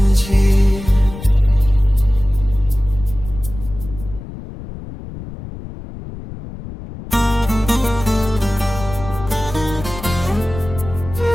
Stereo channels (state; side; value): noise; left; rumble, 12 dB below the sound